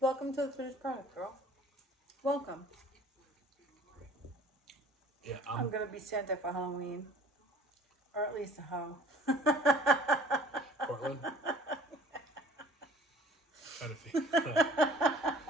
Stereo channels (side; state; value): both; normal; correlation 0.50